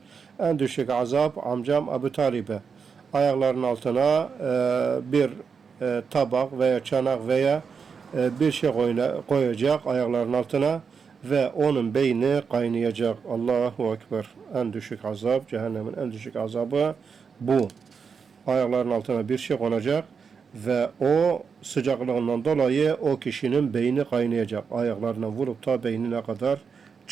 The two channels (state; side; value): quieter; left; 5.9 dB